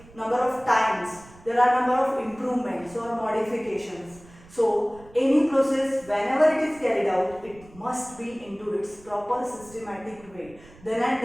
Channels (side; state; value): right; noise; rumble, 23 dB below the sound